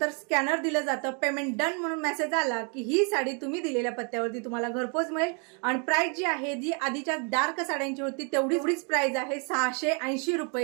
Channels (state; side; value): quieter; left; 37.8 dB